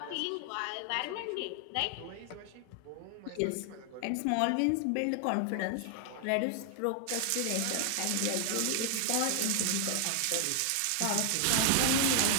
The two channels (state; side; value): different; both; correlation 0.00